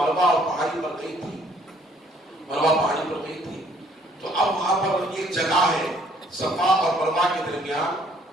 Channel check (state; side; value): normal; both; correlation 0.62